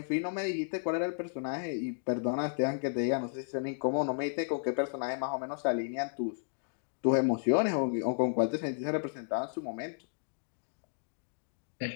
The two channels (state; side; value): silent; right; digital silence